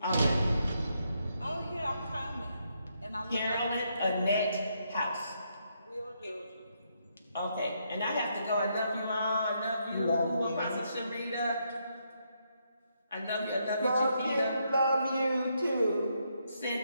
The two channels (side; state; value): both; inverted; correlation -0.77